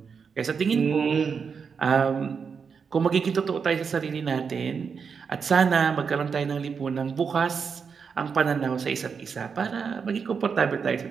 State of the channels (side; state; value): left; quieter; 6.0 dB